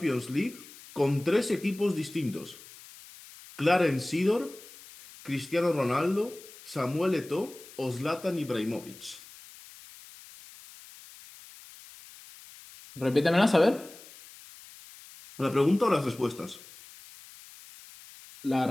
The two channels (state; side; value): noise; left; hiss, 20 dB below the sound